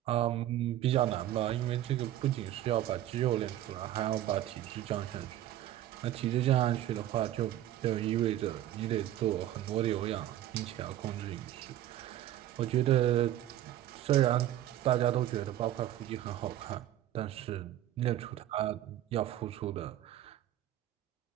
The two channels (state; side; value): quieter; left; 12.9 dB